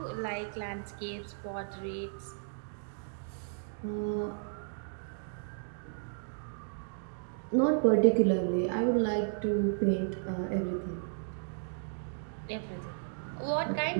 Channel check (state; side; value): silent; left; digital silence